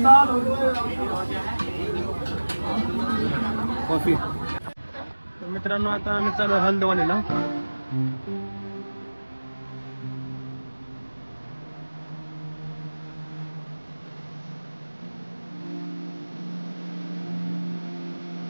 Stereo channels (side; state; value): both; inverted; correlation -1.00